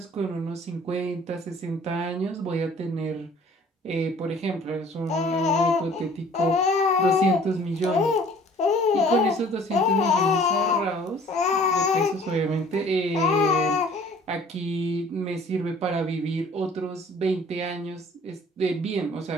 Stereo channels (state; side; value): normal; both; correlation 0.52